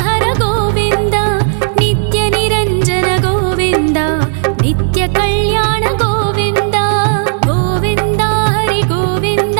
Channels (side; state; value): left; silent; digital silence